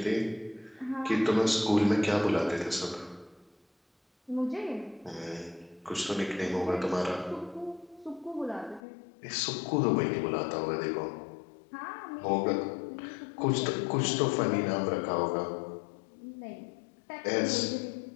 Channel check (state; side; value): drops out; right; at 8.8 s